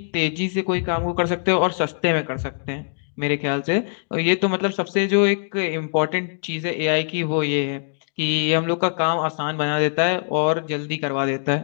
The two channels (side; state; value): right; silent; 64 dB below the other